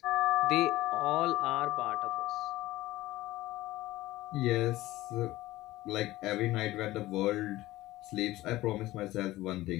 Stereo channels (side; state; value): right; quieter; 17.2 dB